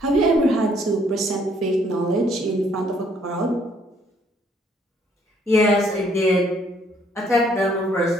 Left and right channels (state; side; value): normal; both; correlation 0.65